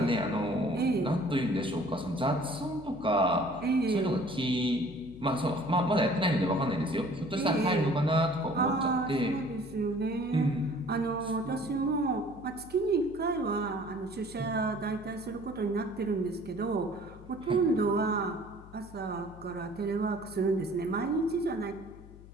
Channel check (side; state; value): left; noise; hum, 18 dB below the sound